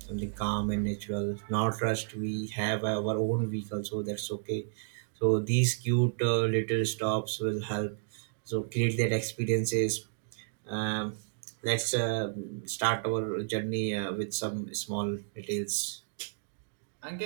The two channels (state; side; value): silent; left; digital silence